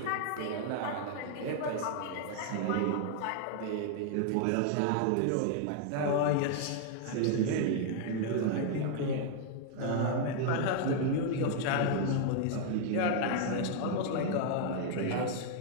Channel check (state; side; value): different; both; correlation 0.00